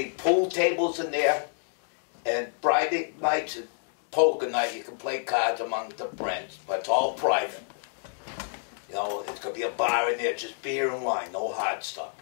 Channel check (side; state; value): right; silent; digital silence